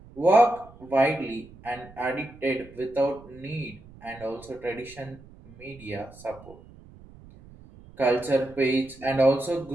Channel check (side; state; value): right; noise; rumble, 21 dB below the sound